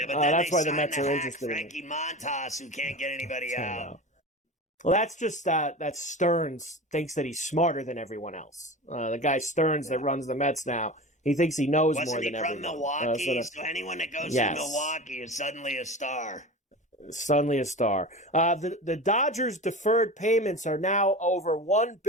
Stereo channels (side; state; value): both; normal; correlation 0.31